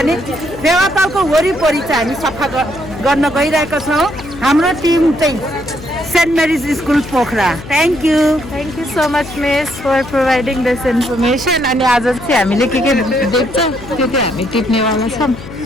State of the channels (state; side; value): noise; left; hum, 14 dB below the sound